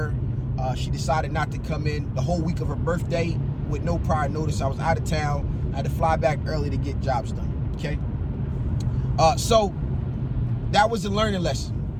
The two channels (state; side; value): identical; both; correlation 1.00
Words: her. She decided not to come in the whole week of her birthday with no prior notice. I was out of town. I had to fly back early to get jobs done, okay? So that was a learning